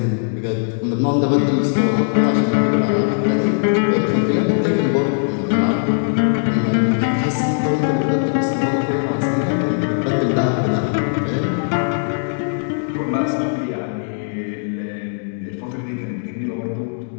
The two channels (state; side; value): silent; right; digital silence